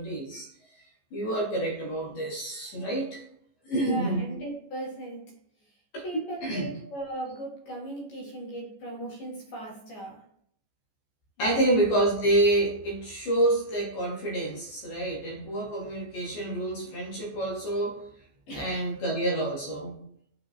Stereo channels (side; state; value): right; late; 14 ms